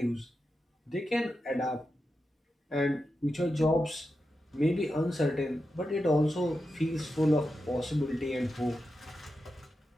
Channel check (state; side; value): normal; both; correlation 0.89